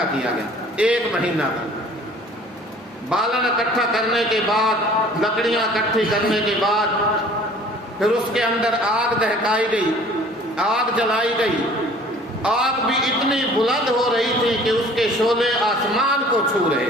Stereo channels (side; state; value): both; normal; correlation 0.50